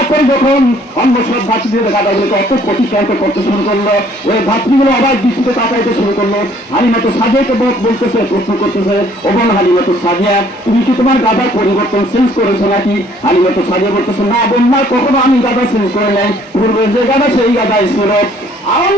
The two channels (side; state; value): both; normal; correlation 0.60